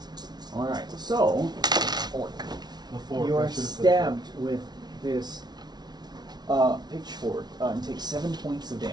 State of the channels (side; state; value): left; late; 0.20 ms